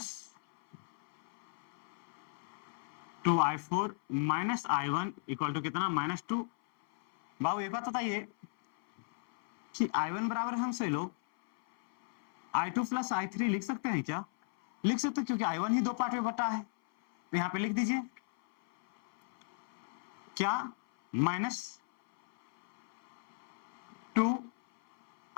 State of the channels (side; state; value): right; silent; 54 dB below the other